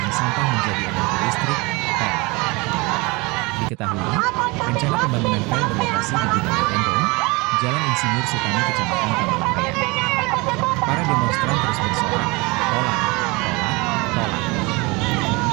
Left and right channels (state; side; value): quieter; left; 25.7 dB